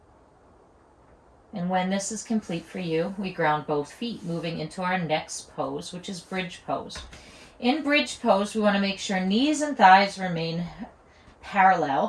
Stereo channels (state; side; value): identical; both; correlation 1.00